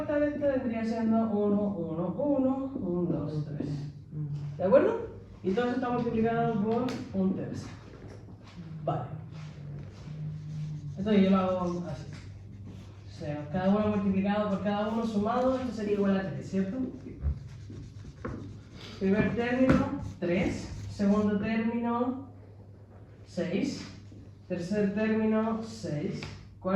de esta vendría siendo 1, 1, 1, 1, 2, 3. ¿De acuerdo? Y todo eso está multiplicado por un tercio. Vale. Entonces yo lo hago así. O sea, cada uno multiplicado por cada uno sumado, esto sería igual a 3, ¿cierto? Primer término, 3. Segundo término, 6. Tercer término, 6.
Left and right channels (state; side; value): identical; both; correlation 1.00